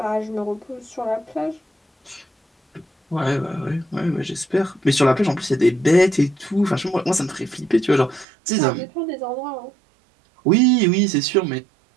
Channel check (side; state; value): left; drops out; at 8.2 s